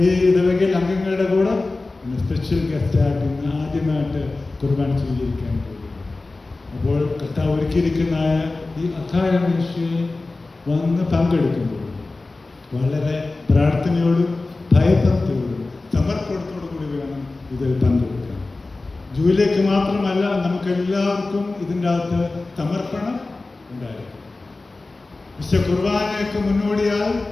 ഈ ഇടവകയിൽ അംഗങ്ങളുടെ കൂടെ ഇന്ന് സ്പെഷ്യൽ ഗസ്റ്റായിട്ട് ഇന്ന് ആദ്യമായിട്ട് കുർബാന സ്വീകരിക്കാൻ പോകുന്നു. അപ്പോൾ കർത്താവ് ഒരുക്കിയിരിക്കുന്ന ഈ അത്താഴ മേശയിൽ വന്ന് പങ്കെടുക്കുമ്പോൾ വളരെ പ്രാർത്ഥനയോടും ഭയഭക്തിയോടും സമർപ്പണത്തോടു കൂടി വേണം ഇതിൽ പങ്കെടുക്കാൻ. ജൂലിക്ക് മാത്രമല്ല, നമുക്കെല്ലാവർക്കും ഇതിൻ്റെ അകത്ത് സമർപ്പണം ഉണ്ടായിരിക്കും. വിശുദ്ധ കുർബാനയ്ക്ക് മുന്നോടിയായി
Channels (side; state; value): right; quieter; 3.3 dB